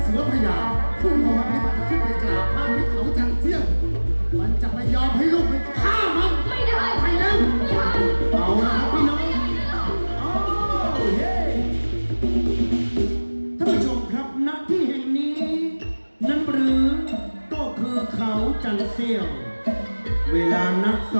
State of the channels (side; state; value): both; inverted; correlation -1.00